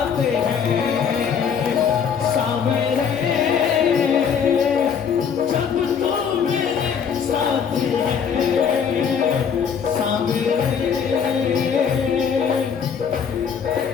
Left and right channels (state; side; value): quieter; right; 7.1 dB